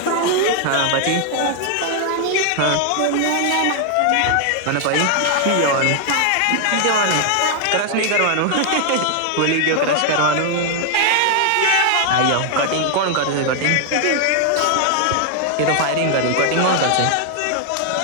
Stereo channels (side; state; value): both; different; correlation 0.00